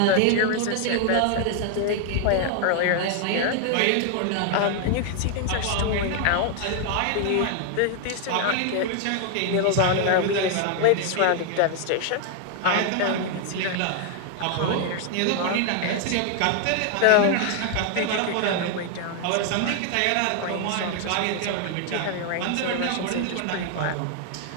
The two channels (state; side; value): different; both; correlation 0.00